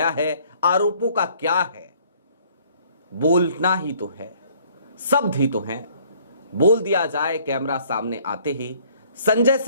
है। आरोपों का क्या है, बोलना ही तो है, शब्द ही तो हैं, बोल दिया जाए कैमरा सामने आते ही। संजय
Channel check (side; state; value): both; inverted; correlation -0.59